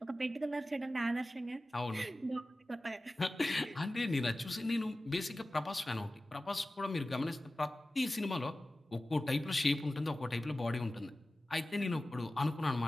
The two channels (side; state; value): both; normal; correlation 0.96